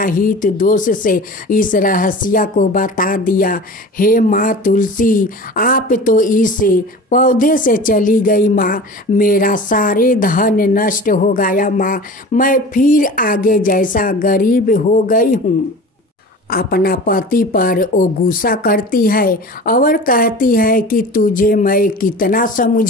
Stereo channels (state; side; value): normal; both; correlation 0.37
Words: हित दोष से इस रहस्य को बता दिया। हे माँ तुलसी, आप तो इस पौधे से चली गई माँ, मेरा सारे धन नष्ट हो गया माँ, मैं फिर आगे जैसा गरीब हो गई हूँ। अपना पति पर वो गुस्सा करती है और कहती है कि तुझे मैं कितना